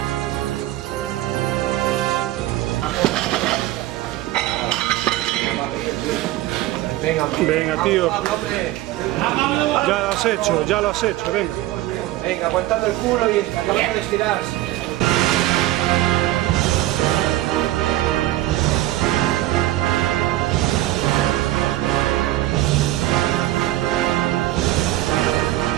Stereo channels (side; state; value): left; quieter; 15.5 dB